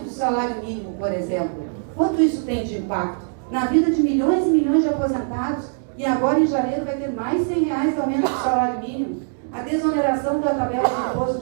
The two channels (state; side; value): silent; left; digital silence